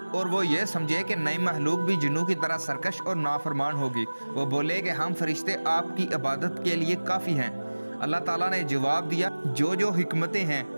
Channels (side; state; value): both; inverted; correlation -1.00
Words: اور وہ یہ سمجھے کہ نئی مخلوق بھی جنوں کی طرح سرکش اور نافرمان ہوگی۔ وہ بولے کہ ہم فرشتے آپ کی عبادت کے لیے کافی ہیں۔ اللہ تعالیٰ نے جواب دیا، جو حکمتیں ہیں